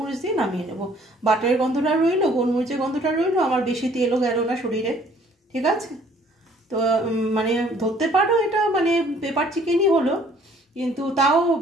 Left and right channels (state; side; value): normal; both; correlation 0.59